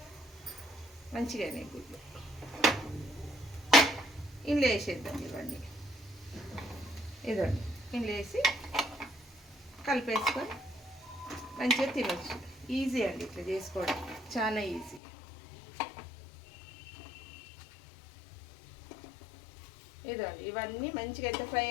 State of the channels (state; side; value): drops out; right; at 15.0 s